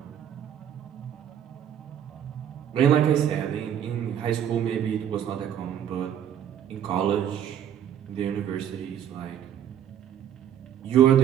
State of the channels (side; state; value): left; quieter; 9.8 dB